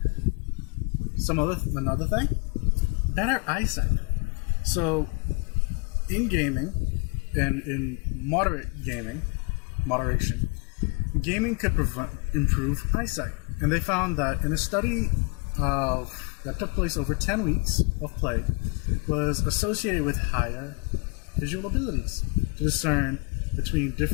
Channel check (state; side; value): quieter; right; 32.3 dB